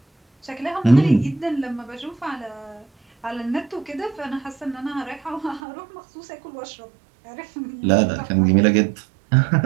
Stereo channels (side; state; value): left; drops out; at 5.6 s